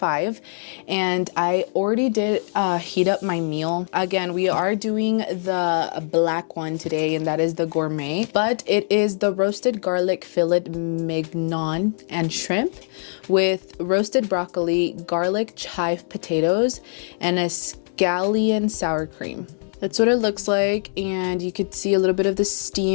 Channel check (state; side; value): silent; right; 64 dB below the other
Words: and I already did heat up my meal. Again, we are doing the black one today, and that is the gourmet, but it is the roasted garlic fillet mignon and shrimp with roasted broccoli, garlic chive potatoes, and a scallion sour cream. That's what it looks like, and you could see a little bit of the